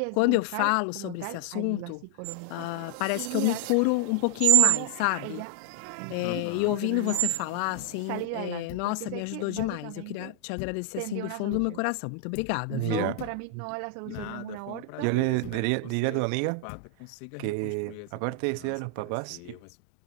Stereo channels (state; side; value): different; both; correlation 0.00